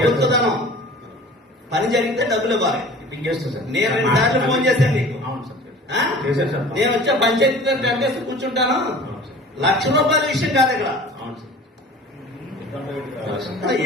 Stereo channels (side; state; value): both; normal; correlation 0.43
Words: పని జరిగితే డబ్బులు ఇవ్వాలి. నేను 2 సార్లు ఫోన్ చేశాను నీకు. నేను వచ్చే పంచాయతీ కట్టేసి కూర్చుంటాను. ₹1,00,000 విషయం కాదు ఇక్కడ.